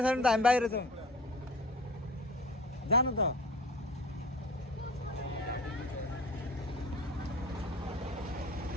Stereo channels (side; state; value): both; normal; correlation 0.41